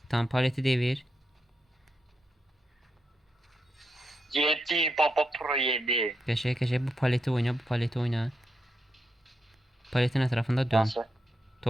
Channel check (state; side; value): normal; both; correlation 0.84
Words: Tamam paleti devir. 7 baba pro 7. Qəşəng bu paleti oyna. Bu paleti oyna. Paletin ətrafında dön. Nasıl?